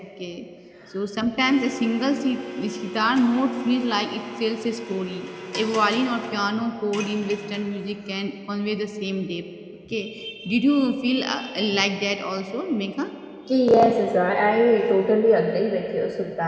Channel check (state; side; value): identical; both; correlation 1.00